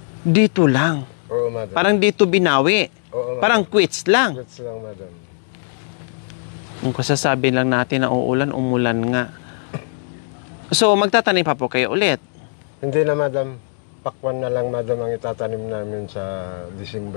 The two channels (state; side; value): silent; right; digital silence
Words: Dito lang. Oo, madam. Parang dito binawi. Oo, madam. Parang quits lang. Quits lang, madam. Kung kasasabi lang natin na uulan, umulan nga. So, magtatanim pa po kayo ulit? Hindi na, madam. Pakwan na lang, madam, ang itatanim namin sa